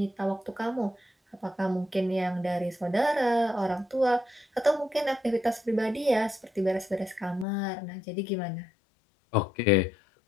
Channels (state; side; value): drops out; right; at 7.5 s